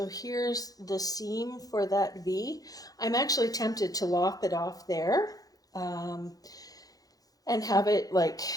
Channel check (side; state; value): right; late; 0.18 ms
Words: here's the seam for that V. I'm actually tempted to lop it off there and have it like,